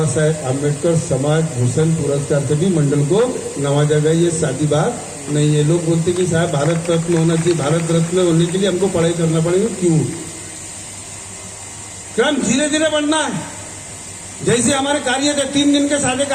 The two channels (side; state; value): both; identical; correlation 1.00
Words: साहेब आम्बेडकर समाज भूषण पुरस्कार से भी मंडल को नवाजा गया। ये सादी बात नहीं है। लोग बोलते कि साहब भारत रत्न होना चाहिए, भारत रत्न होने के लिए हमको पढ़ाई करना पड़ेगा। क्यों? क्रम धीरे धीरे बढ़ना है। जैसे हमारे कार्य थे, 3 दिन के सादे